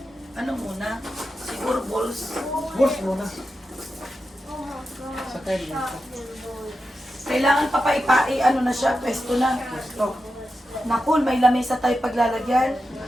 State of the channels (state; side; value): normal; both; correlation 0.90